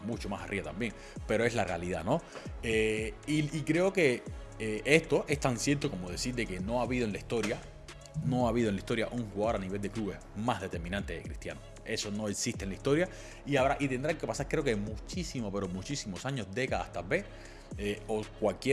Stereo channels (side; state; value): both; identical; correlation 1.00